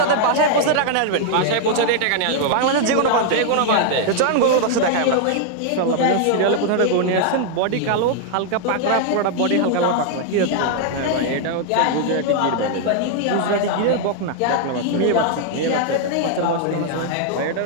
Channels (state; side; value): different; both; correlation 0.00